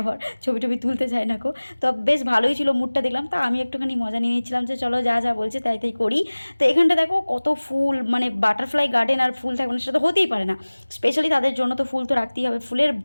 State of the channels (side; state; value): both; inverted; correlation -1.00